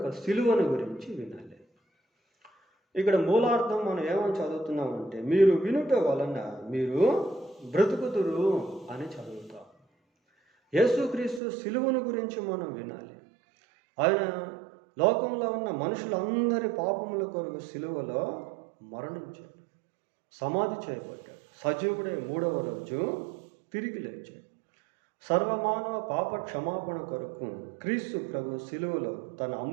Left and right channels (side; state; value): left; drops out; at 11.4 s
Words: సిలువను గురించి వినాలి. ఇక్కడ మూలార్థం మనం ఏమని చదువుతున్నామంటే, మీరు వినుట వలన మీరు బ్రతుకుదురు అని చదువుతాం. యేసుక్రీస్తు సిలువను గురించి మనం వినాలి. ఆయన లోకంలో ఉన్న మనుషులందరి పాపముల కొరకు సిలువలో మరణించాడు, సమాధి చేయబడ్డాడు, సజీవుడై 3వ రోజు తిరిగి లేచాడు. సర్వమానవ పాప క్షమాపణ కొరకు క్రీస్తు ప్రభు సిలువలో తన